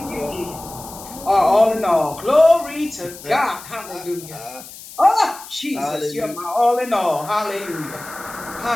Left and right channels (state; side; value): noise; left; hiss, 16 dB below the sound